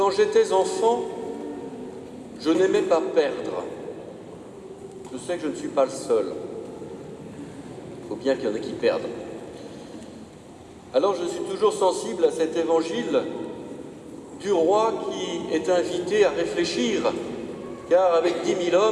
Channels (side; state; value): both; identical; correlation 1.00